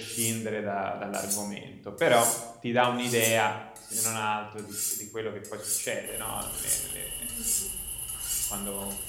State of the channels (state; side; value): identical; both; correlation 1.00